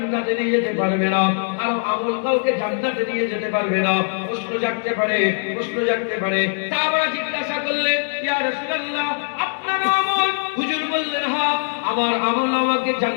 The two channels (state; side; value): silent; right; digital silence